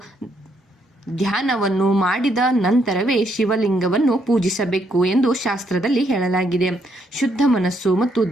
ಧ್ಯಾನವನ್ನು ಮಾಡಿದ ನಂತರವೇ ಶಿವಲಿಂಗವನ್ನು ಪೂಜಿಸಬೇಕು ಎಂದು ಶಾಸ್ತ್ರದಲ್ಲಿ ಹೇಳಲಾಗಿದೆ. ಶುದ್ಧ ಮನಸ್ಸು ಮತ್ತು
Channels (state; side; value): normal; both; correlation 0.74